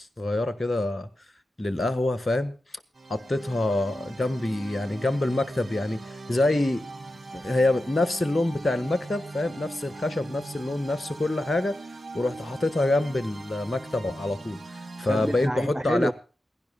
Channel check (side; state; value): both; normal; correlation 0.91